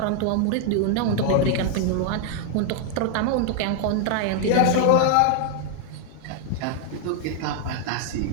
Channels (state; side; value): different; both; correlation 0.00